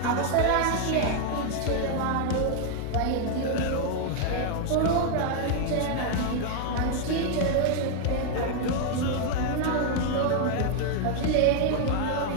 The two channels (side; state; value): both; different; correlation 0.00